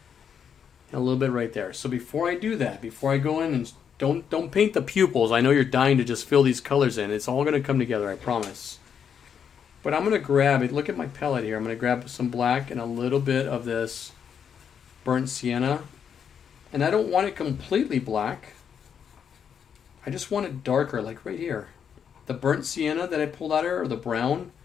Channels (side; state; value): right; quieter; 7.7 dB